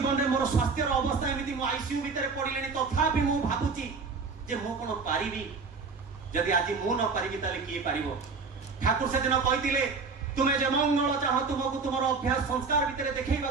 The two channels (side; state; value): left; quieter; 4.7 dB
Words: में मोर स्वास्थ्य अवस्था एमती मो आईसीयू भितर पड़िले तथापि मु भाबुची जे मु कोन पारिबी जदि आज मु न पारिबी ताले किए पारिबो। ठाकुर से दिन कहितिले तुमे जे मंगल चाह तुमको तुमर अभ्यास संस्कार भितर देखैबा